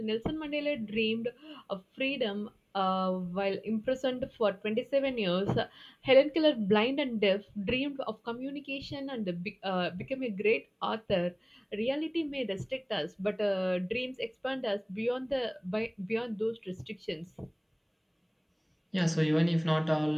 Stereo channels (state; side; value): identical; both; correlation 1.00